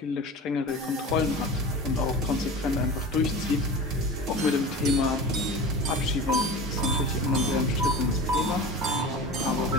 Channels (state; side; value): normal; both; correlation 0.33